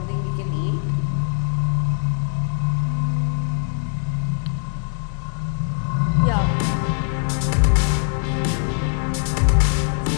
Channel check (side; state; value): right; silent; 60 dB below the other